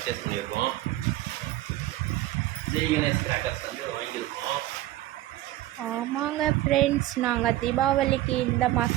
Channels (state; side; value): quieter; left; 15.3 dB